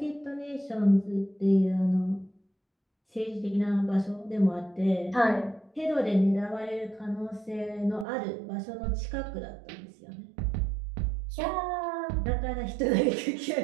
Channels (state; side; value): drops out; left; at 8.1 s